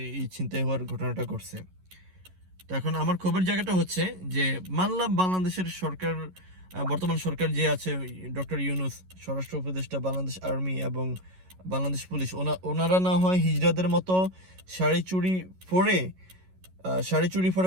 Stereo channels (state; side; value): late; left; 11 ms